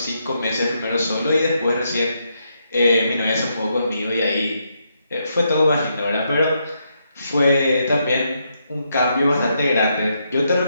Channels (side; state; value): both; inverted; correlation -0.79